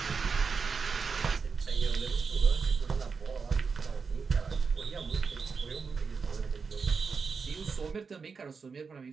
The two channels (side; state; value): left; quieter; 5.2 dB